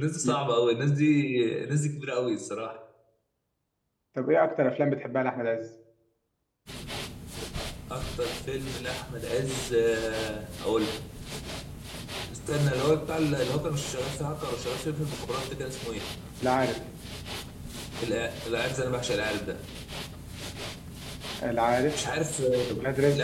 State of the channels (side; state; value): both; identical; correlation 1.00